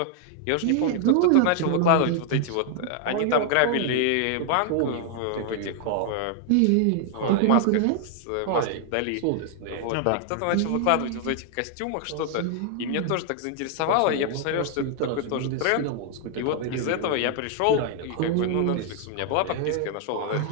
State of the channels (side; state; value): both; different; correlation 0.00